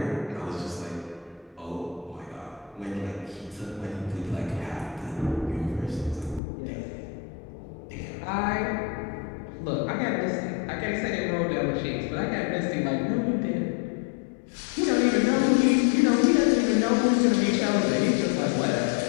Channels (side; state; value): right; drops out; at 6.4 s